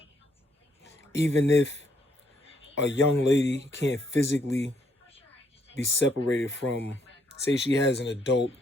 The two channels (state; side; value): normal; both; correlation 0.71